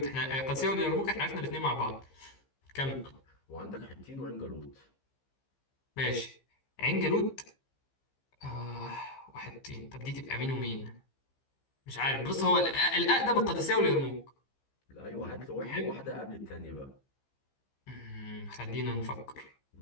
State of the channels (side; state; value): right; late; 15 ms